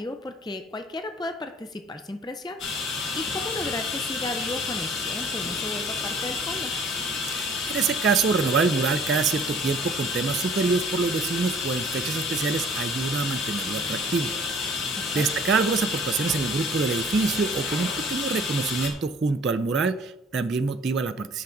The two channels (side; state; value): both; normal; correlation 0.53